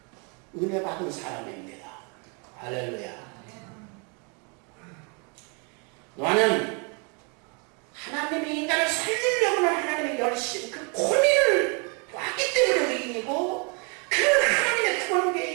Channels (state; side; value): quieter; left; 34.5 dB